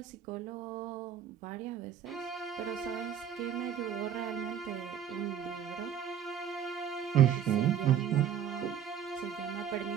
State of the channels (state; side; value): quieter; left; 9.1 dB